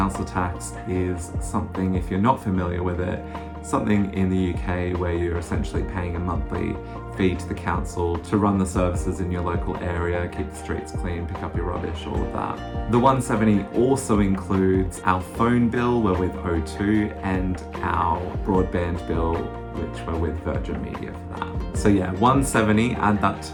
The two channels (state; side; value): identical; both; correlation 1.00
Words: tax is something, if you're not familiar with it, something in the UK where you're essentially paying a monthly fee to the council to run the services in your local area, keep the streets clean, pick up your rubbish, all of that. The 170 also includes our phone bill, we're with O2, and our broadband bill, which we're with Virgin Media for that. So yeah, 170, add that